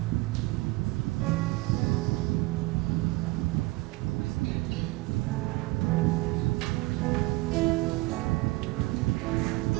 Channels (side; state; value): left; quieter; 21.8 dB